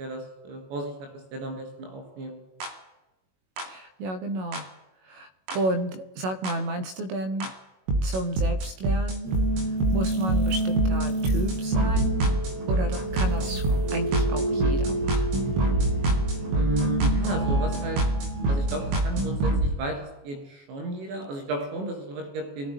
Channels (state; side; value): late; left; 21 ms